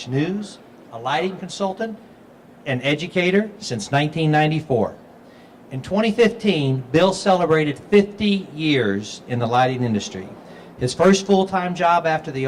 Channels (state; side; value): identical; both; correlation 1.00